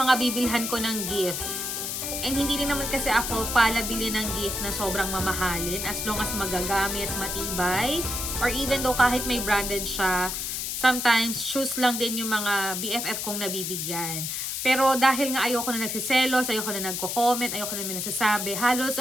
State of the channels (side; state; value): left; noise; hiss, 3 dB below the sound